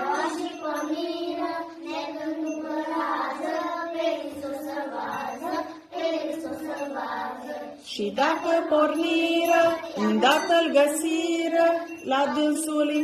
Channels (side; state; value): both; identical; correlation 1.00